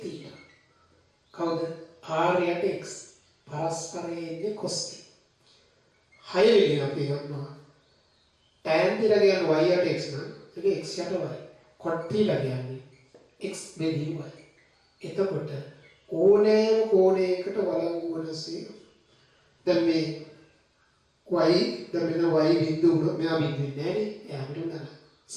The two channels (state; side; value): identical; both; correlation 1.00